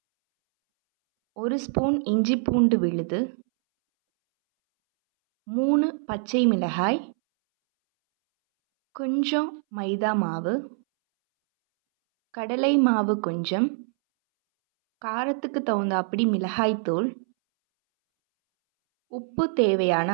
1 ஸ்பூன் இஞ்சி பூண்டு விழுது, 3 பச்சை மிளகாய், கொஞ்சம் மைதா மாவு, கடலை மாவு கொஞ்சம், காரத்துக்கு தகுந்தாப்படி மிளகாய்த்தூள், உப்பு தேவையான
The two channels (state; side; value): silent; left; 62 dB below the other